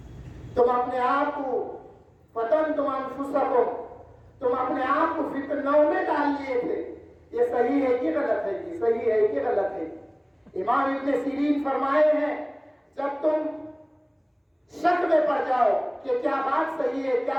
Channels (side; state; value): both; identical; correlation 1.00